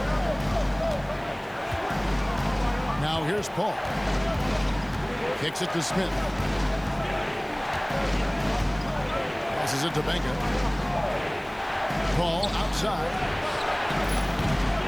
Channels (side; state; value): left; noise; hiss, 28 dB below the sound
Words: Now here's Paul. Kicks it to Smith. Passes it to Benga. Paul outside.